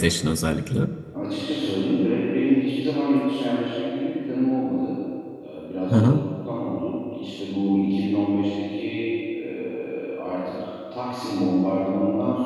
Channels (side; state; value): both; identical; correlation 1.00